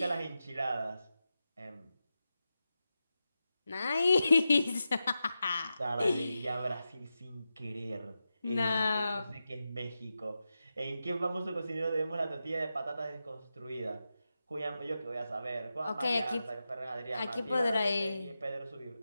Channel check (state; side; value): inverted; both; correlation -0.90